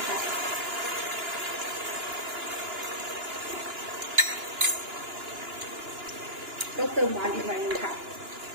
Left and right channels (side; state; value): left; late; 2.9 ms